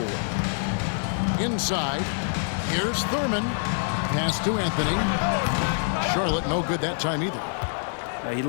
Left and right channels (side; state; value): right; silent; digital silence